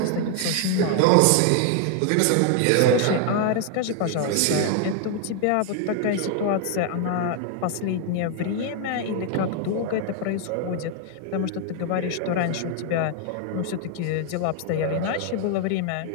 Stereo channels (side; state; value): both; different; correlation 0.00